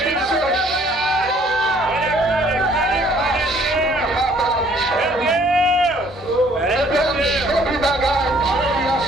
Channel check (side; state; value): both; normal; correlation 0.60